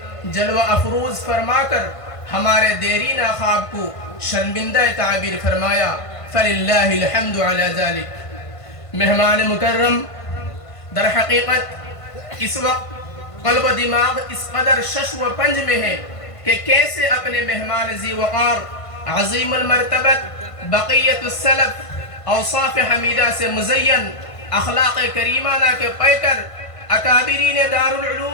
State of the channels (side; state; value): right; late; 1.5 ms